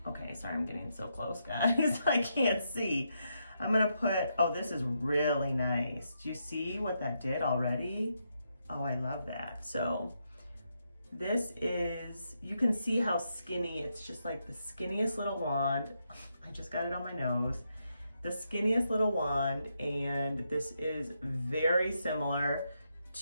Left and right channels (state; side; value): inverted; both; correlation -0.81